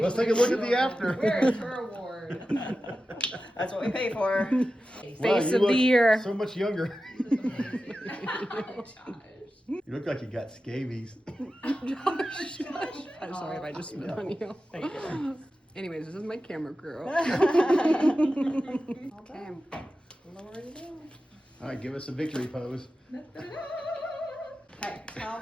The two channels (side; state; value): both; normal; correlation 0.93